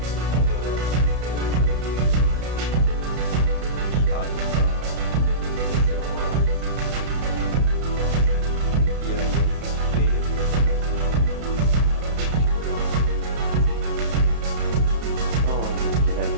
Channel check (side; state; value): left; late; 32 ms